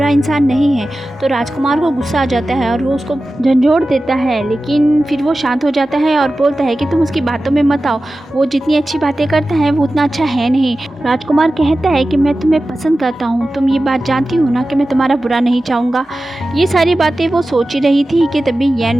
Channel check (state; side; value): normal; both; correlation 0.94